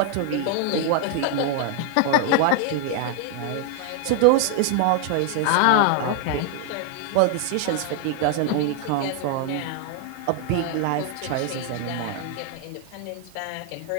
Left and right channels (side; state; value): both; different; correlation 0.00